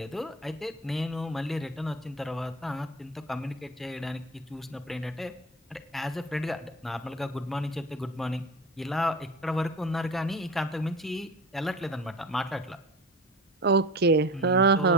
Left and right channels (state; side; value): normal; both; correlation 0.34